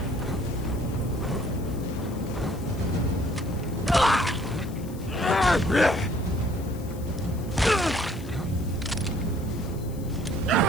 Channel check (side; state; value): left; noise; hiss, 20 dB below the sound